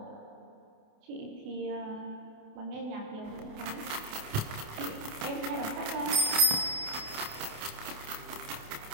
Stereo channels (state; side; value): late; left; 28 ms